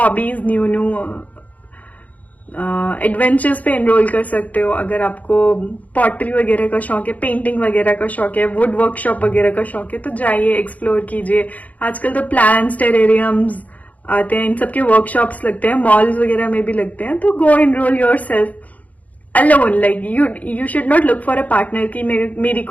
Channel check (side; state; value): right; late; 0.074 ms